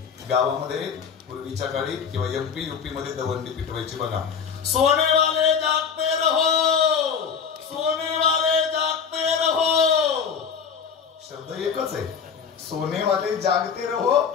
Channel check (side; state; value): right; quieter; 6.6 dB